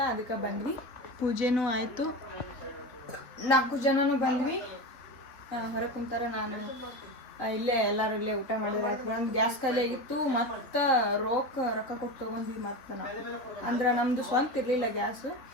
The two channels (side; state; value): right; late; 3.7 ms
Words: ಅದಕ್ಕೆ ಬಂದ್ವಿ. ಪೂಜೆನೂ ಆಯಿತು. 4 ಜನನೂ ಬಂದ್ವಿ. ಹೊರಗೆ ಕುಂತಾರ. ನಾನು ಇಲ್ಲೇ ಎಲ್ಲರೂ ಇಲ್ಲೇ ಊಟ ಮಾಡಿದ್ರೆ ಆಯ್ತು. ಒಂದು ಗ್ಯಾಸ್ ಖಾಲಿ ಆಗಿತ್ತು. ಮತ್ತು ರೊಕ್ಕ ಕೊಟ್ಟು ತೊಗೊಂಡ್ವಿ. ಮತ್ತು ನಾವು ಅಂದ್ರೆ ನಮ್ಮದು ಸ್ವಂತ ಇರಲಿಲ್ಲ ಗ್ಯಾಸು.